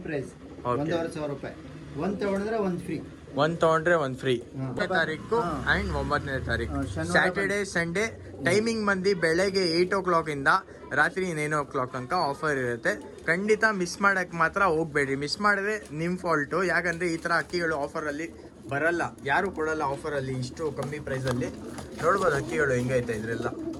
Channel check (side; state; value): both; identical; correlation 1.00